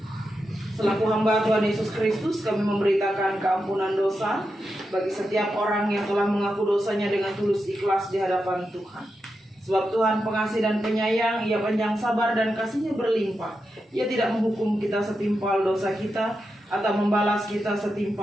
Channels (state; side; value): normal; both; correlation 0.88